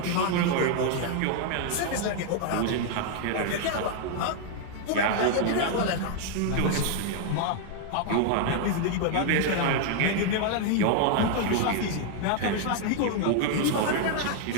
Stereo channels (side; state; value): both; different; correlation 0.00